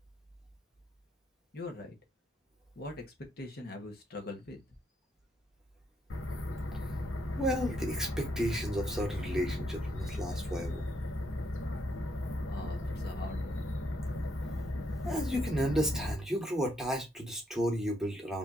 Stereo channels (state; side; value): normal; both; correlation 0.75